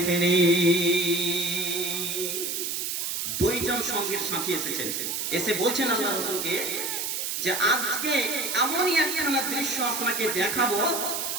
দুইজন সঙ্গীর সাথী এসেছেন, এসে বলছেন আল্লাহ রাসূলকে যে আজকে এমনই একখানা দৃশ্য আপনাকে দেখাবো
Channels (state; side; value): noise; right; hiss, 2 dB below the sound